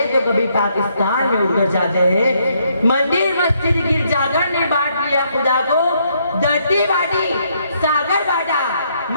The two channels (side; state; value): both; inverted; correlation -0.72